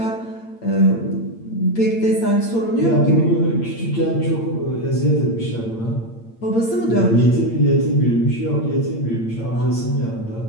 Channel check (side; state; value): right; late; 8.8 ms